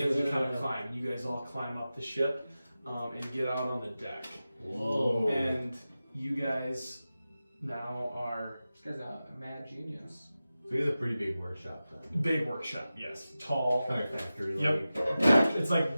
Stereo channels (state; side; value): inverted; both; correlation -0.94